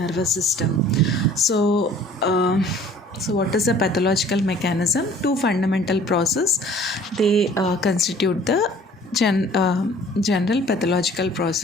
system. So what is the pathological mechanism? Two fundamental processes, they constitute the general pathological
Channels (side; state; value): both; normal; correlation 0.52